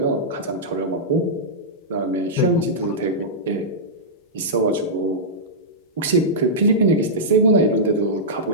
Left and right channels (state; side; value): normal; both; correlation -0.12